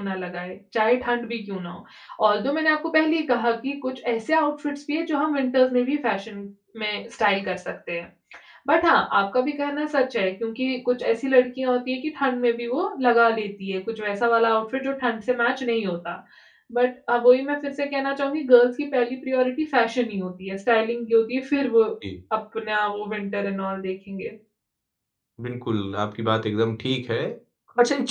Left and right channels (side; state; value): both; identical; correlation 1.00